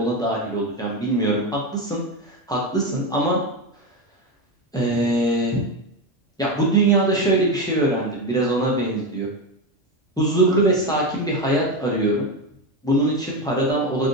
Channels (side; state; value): both; normal; correlation 0.15